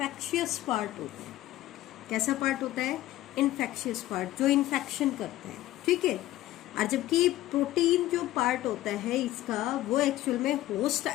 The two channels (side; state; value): right; quieter; 15.2 dB